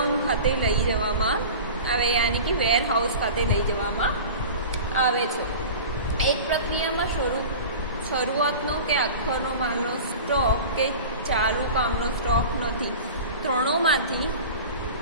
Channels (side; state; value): both; inverted; correlation -0.36